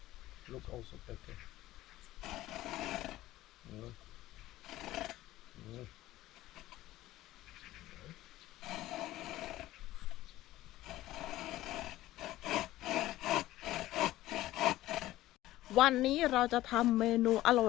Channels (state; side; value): quieter; right; 15.8 dB